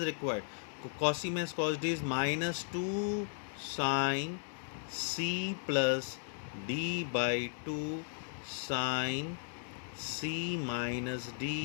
required. Cos c minus cos d is minus 2 sine c plus d by 2 sine c minus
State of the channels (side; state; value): right; silent; 54 dB below the other